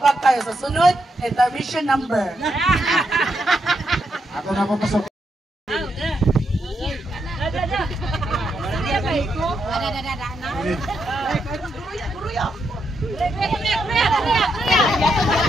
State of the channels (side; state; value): both; normal; correlation 0.81